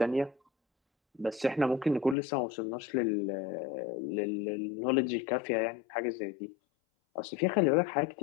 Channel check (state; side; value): drops out; right; at 2.1 s